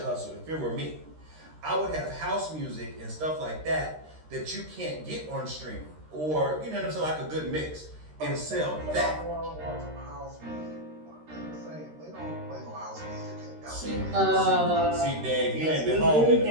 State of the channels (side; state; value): left; late; 13 ms